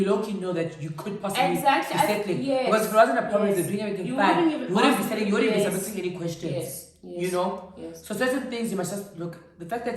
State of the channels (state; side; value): identical; both; correlation 1.00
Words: low-key know that you could possibly be settling. Yes. Because if it wasn't a problem, they're doing everything fine, you wouldn't be settling, you wouldn't be submitting any questions. Yes. You know? Yes. So certain things you must just look, the fact